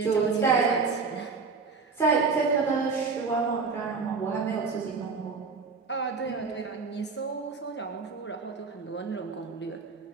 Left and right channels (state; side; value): quieter; left; 4.7 dB